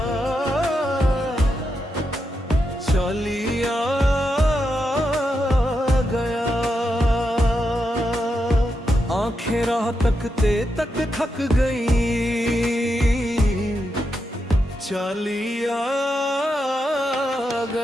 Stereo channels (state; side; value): normal; both; correlation 0.85